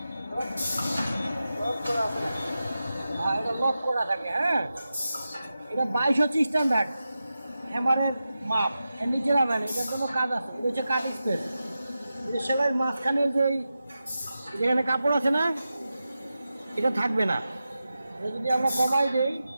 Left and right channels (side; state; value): both; inverted; correlation -0.92